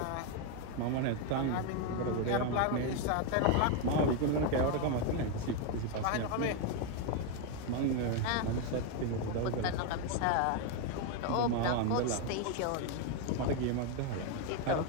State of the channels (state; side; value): different; both; correlation 0.01